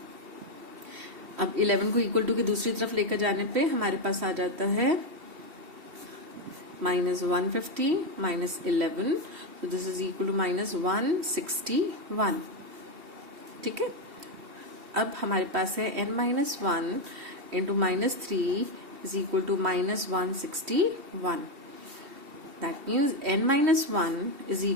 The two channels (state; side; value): late; left; 3.1 ms